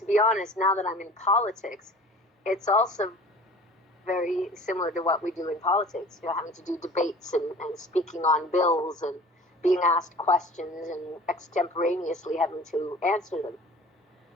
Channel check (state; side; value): normal; both; correlation 0.45